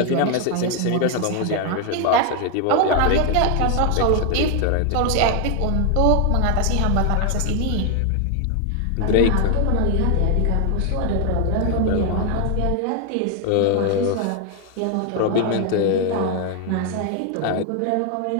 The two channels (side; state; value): both; different; correlation 0.00